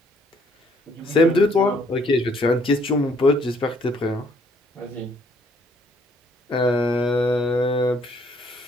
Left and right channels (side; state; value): both; normal; correlation 0.65